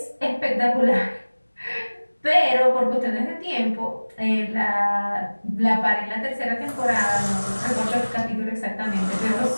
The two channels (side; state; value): both; inverted; correlation -1.00